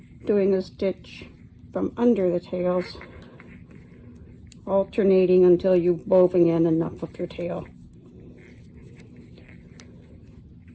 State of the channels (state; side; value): identical; both; correlation 1.00